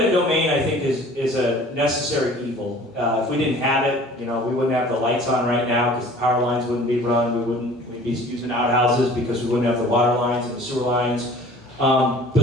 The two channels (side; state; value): both; normal; correlation 0.47